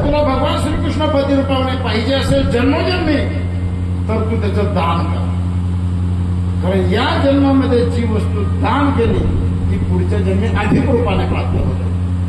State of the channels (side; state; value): both; identical; correlation 1.00